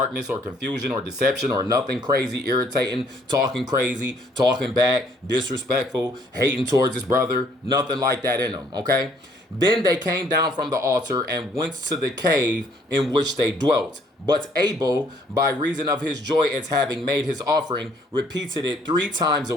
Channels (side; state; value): both; normal; correlation 0.64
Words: or confusion, or deception, or nothing crazy, irritating, talking crazy, talking back, disrespectful, hating towards his brother. Nothing like that in him, okay? Then they came down from the altar and went to the cave in which they dwelt. But Abel, by reason of his joy at having made his offering, repeated it 3 times a